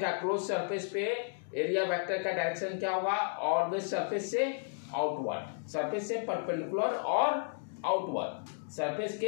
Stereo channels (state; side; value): silent; right; digital silence